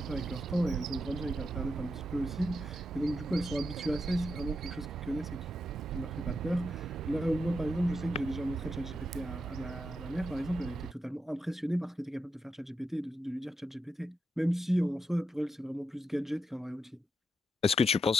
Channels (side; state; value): both; normal; correlation 0.84